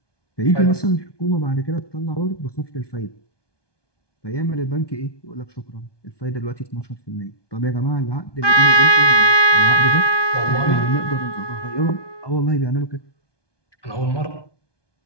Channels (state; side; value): late; right; 1.2 ms